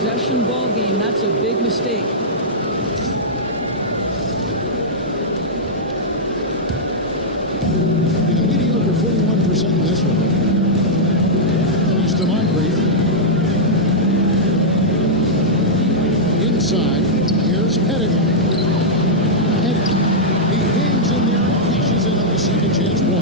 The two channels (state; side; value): normal; both; correlation -0.08